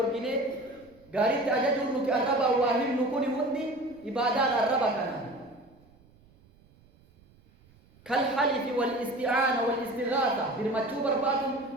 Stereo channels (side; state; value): right; noise; rumble, 29 dB below the sound